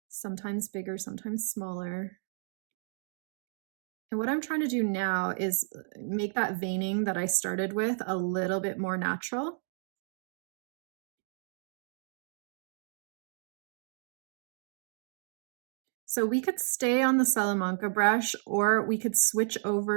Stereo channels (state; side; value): silent; left; digital silence